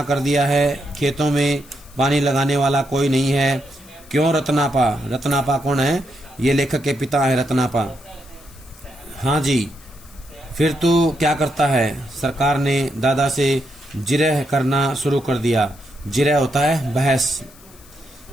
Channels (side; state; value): left; noise; hiss, 24 dB below the sound